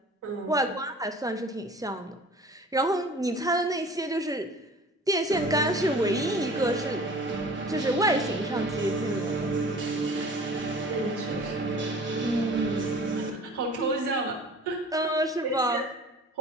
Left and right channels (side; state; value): both; normal; correlation 0.45